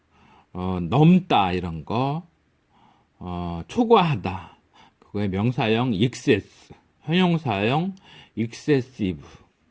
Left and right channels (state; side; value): identical; both; correlation 1.00